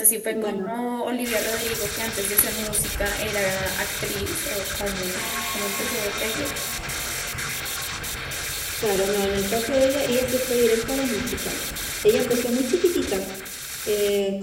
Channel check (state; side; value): identical; both; correlation 1.00